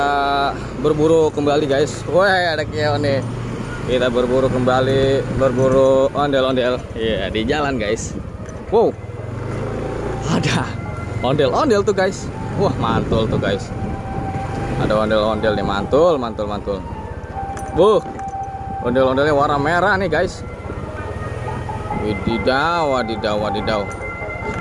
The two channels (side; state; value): both; identical; correlation 1.00